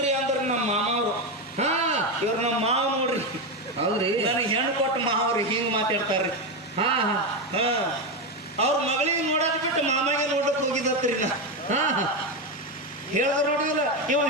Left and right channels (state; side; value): normal; both; correlation 0.11